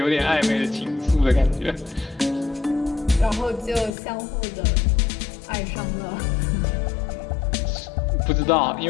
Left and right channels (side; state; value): right; drops out; at 4.0 s